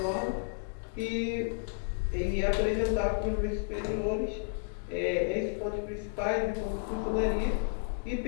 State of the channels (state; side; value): silent; right; digital silence